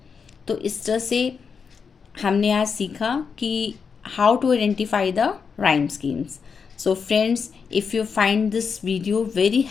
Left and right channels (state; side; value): quieter; right; 5.9 dB